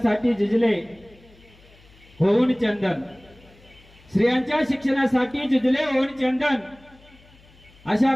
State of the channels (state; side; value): noise; left; hum, 27 dB below the sound